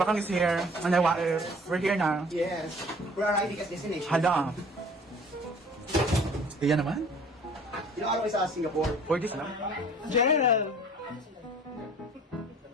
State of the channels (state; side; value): normal; both; correlation 0.50